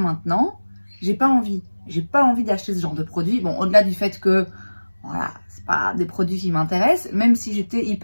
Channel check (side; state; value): both; inverted; correlation -1.00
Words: j'ai pas envie d'acheter ce genre de produit. Bon, au-delà du fait que Voilà, c'est pas des produits qui m'intéressent, même si j'étais